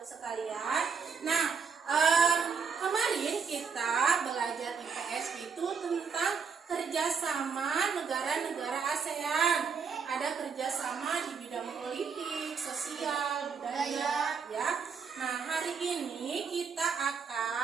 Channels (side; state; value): left; quieter; 5.9 dB